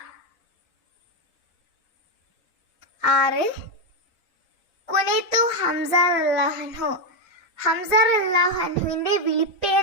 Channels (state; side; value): normal; both; correlation 0.05